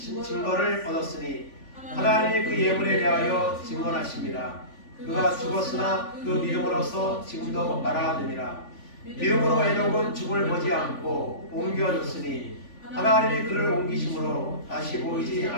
얻었으니 하나님이 그 예물에 대하여 증언하심이라. 그가 죽었으나 그 믿음으로써 지금도 말하느니라. 믿음으로 에녹은 죽음을 보지 않고 옮겨졌으니 하나님이 그를 옮기심으로 다시 보이지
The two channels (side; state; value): right; late; 3.5 ms